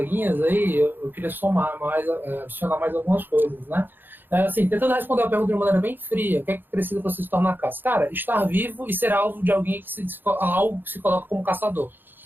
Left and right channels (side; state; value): left; late; 0.095 ms